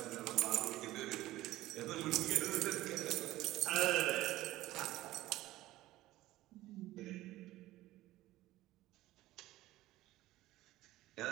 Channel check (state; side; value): quieter; left; 16.4 dB